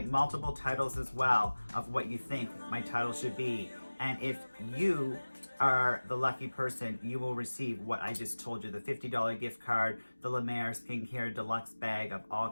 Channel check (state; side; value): inverted; both; correlation -1.00